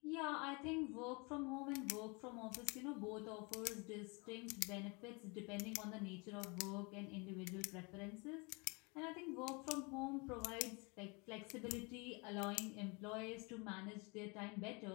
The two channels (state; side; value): quieter; right; 29.9 dB